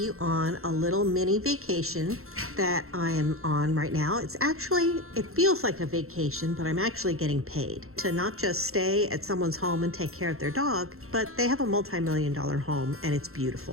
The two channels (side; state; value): left; late; 0.62 ms